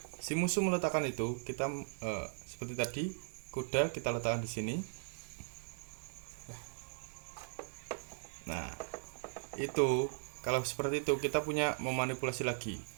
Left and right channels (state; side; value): silent; left; digital silence